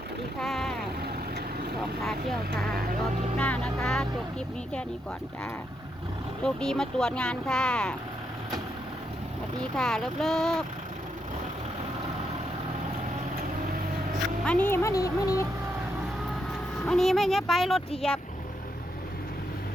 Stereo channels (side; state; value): both; normal; correlation 0.80